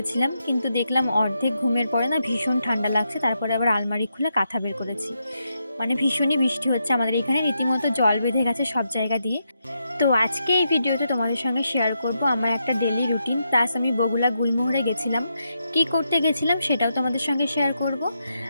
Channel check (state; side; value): inverted; both; correlation -0.83